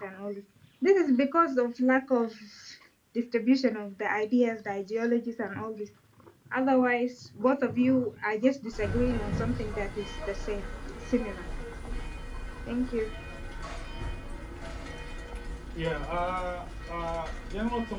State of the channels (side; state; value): both; identical; correlation 1.00